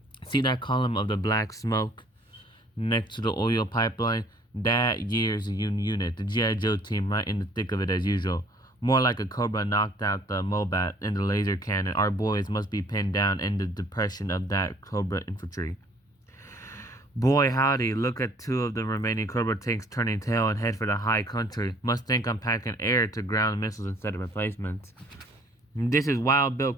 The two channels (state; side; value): normal; both; correlation 0.57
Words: See that column of the black smoke next to the oil pipeline? That year's unit, the G.I Joe team, right in the thick of it as usual. More like a cobra knocked out the Mobat and the laser cannon. Our boys must be pinned down in the depression of that cobra infantry. Boy howdy, look at two of the remaining cobra tanks turning tail and head for the high country. Must think I'm packing air to ground missiles instead of replacements. This is Wild Bill